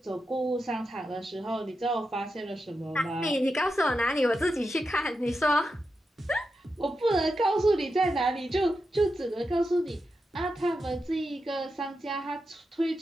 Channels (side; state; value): both; normal; correlation 0.88